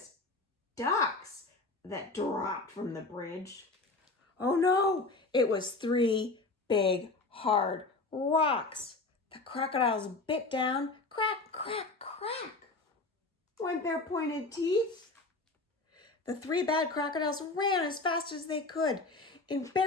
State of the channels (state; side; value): quieter; right; 3.4 dB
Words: ducks that dropped from the bridge. Oh no, it was 3 big, hard rocks. The crocodiles bit down, crack, crack, crack, went their pointed teeth. The 3 bad crocodiles ran as fast as they could. In